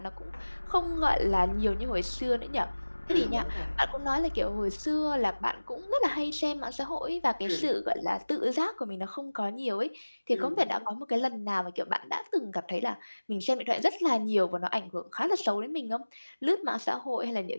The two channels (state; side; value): inverted; both; correlation -1.00